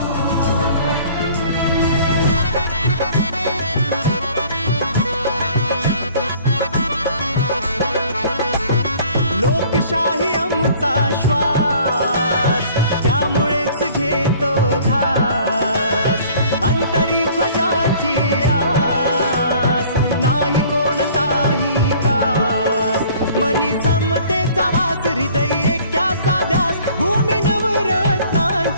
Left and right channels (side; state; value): both; inverted; correlation -0.52